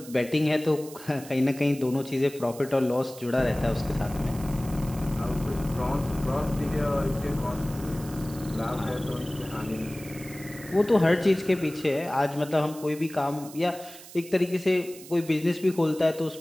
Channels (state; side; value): noise; right; hiss, 17 dB below the sound